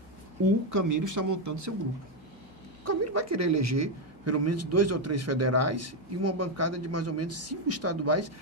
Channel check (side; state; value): both; normal; correlation 0.05